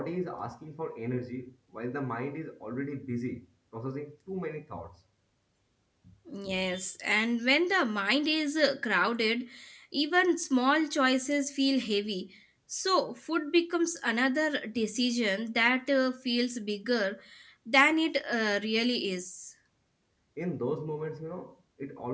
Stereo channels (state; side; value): identical; both; correlation 1.00